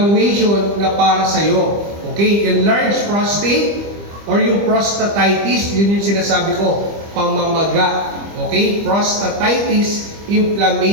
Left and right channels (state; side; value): late; left; 25 ms